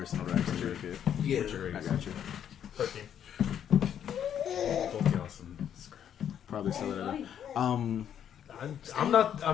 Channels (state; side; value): quieter; right; 9.4 dB